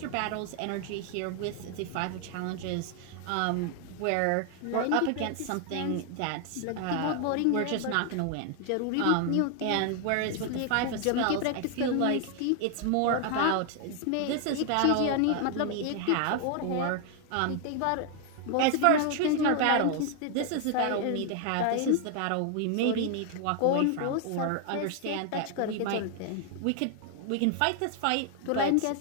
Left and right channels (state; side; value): different; both; correlation 0.00